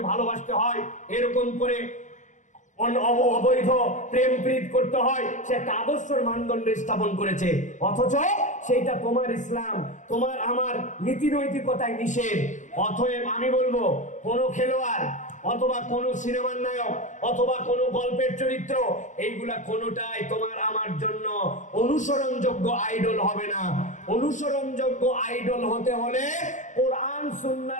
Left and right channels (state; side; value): late; right; 0.36 ms